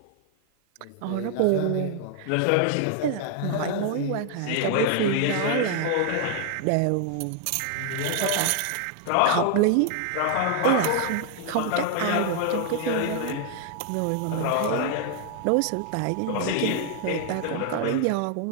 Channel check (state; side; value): different; both; correlation 0.00